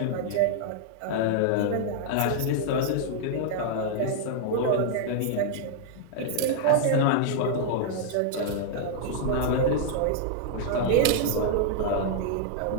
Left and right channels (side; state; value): both; different; correlation -0.01